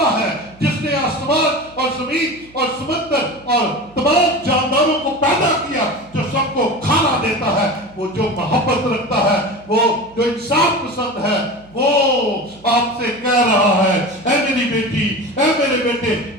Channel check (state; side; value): noise; right; hum, 25 dB below the sound